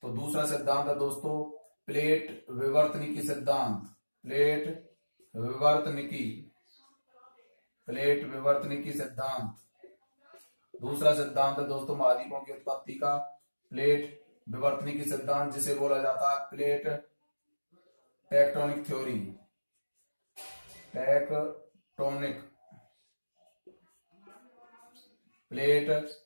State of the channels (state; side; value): inverted; both; correlation -1.00